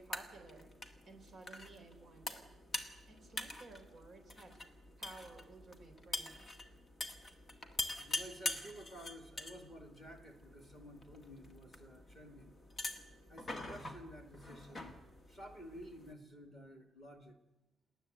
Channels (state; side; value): normal; both; correlation 0.82